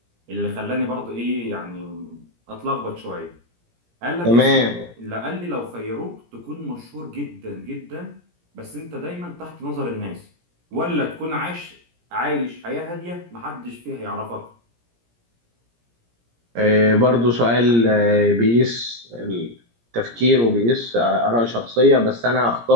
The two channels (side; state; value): left; late; 17 ms